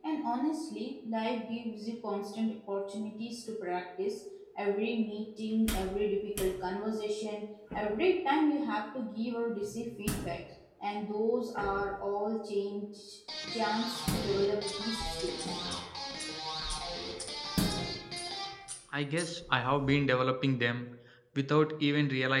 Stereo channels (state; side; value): identical; both; correlation 1.00